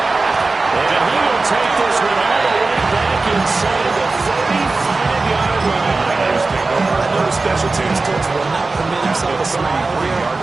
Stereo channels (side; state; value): left; quieter; 3.6 dB